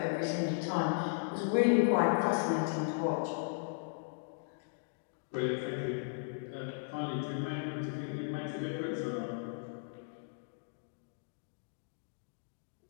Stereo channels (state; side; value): silent; right; digital silence